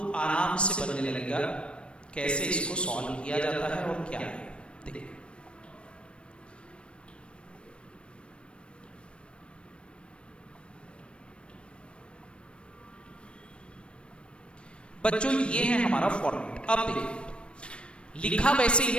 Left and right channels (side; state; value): right; late; 0.058 ms